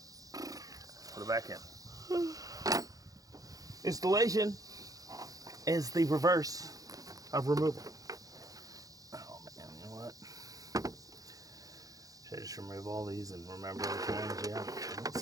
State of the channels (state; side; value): late; left; 0.17 ms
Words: Put it back in. Installation is the reverse of removal. Oh man, you know what? Should I just remove all these and remember which ones? Yeah.